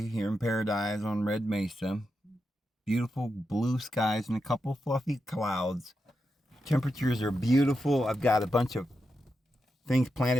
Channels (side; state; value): both; normal; correlation 0.87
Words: here in paradise on Red Mesa. Beautiful blue skies and a couple fluffy clouds. Temperatures are beautiful. I've got a bunch of things